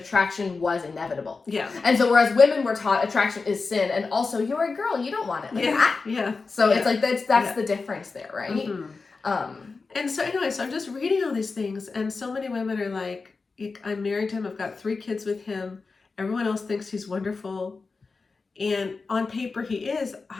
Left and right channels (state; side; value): quieter; right; 4.3 dB